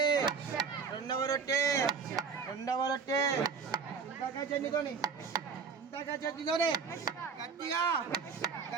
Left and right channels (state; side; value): quieter; left; 5.5 dB